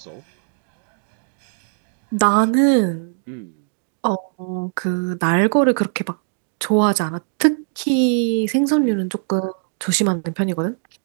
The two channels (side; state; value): left; silent; 65 dB below the other